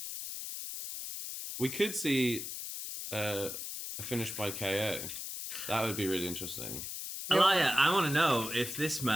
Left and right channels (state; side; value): noise; left; hiss, 6 dB below the sound